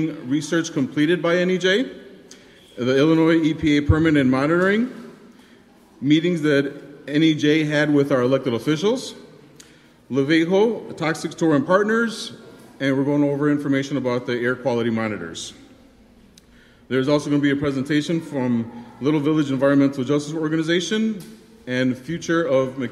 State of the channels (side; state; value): both; identical; correlation 1.00